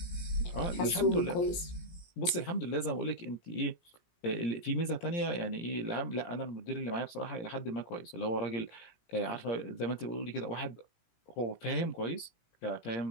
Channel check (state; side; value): late; right; 17 ms